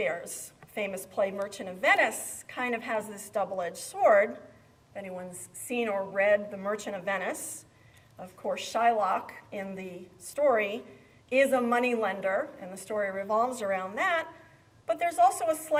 famous play Merchant of Venice kind of has this double-edged sword. If anyone's seen or read The Merchant of Venice, of course, Shylock in the story is a moneylender, and the story revolves around that. But there's also a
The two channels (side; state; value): both; identical; correlation 1.00